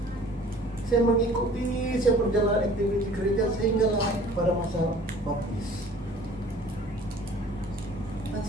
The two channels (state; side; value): normal; both; correlation 0.50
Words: saya mengikuti, saya berjalan aktivitas gereja sehinggalah pada masa baptis. Dan